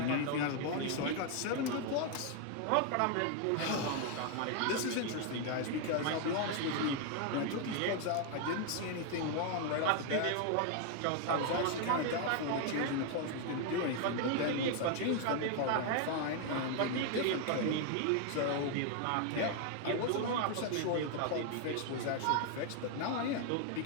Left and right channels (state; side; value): different; both; correlation 0.00